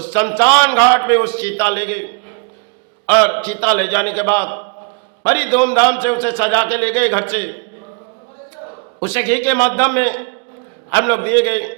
शमशान घाट पे उस चीता ले गए और चीता ले जाने के बाद बड़ी धूमधाम से उसे सजा के ले गए घर से। उसे घी के माध्यम में हम लोग दिए गए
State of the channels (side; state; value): left; quieter; 36.2 dB